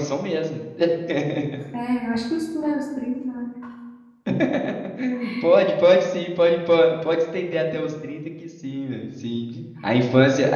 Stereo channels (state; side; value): identical; both; correlation 1.00